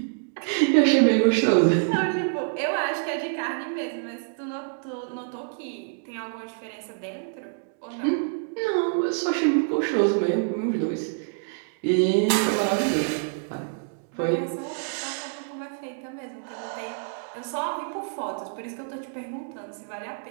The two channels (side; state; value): left; silent; digital silence